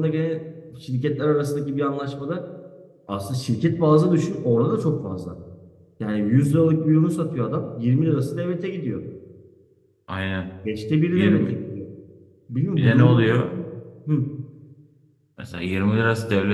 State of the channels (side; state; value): both; identical; correlation 1.00